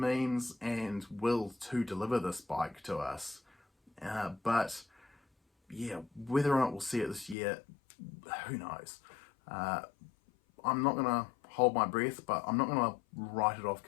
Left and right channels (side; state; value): right; drops out; at 7.4 s